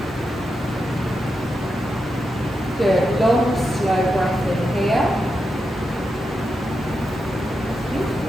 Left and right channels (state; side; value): normal; both; correlation 0.87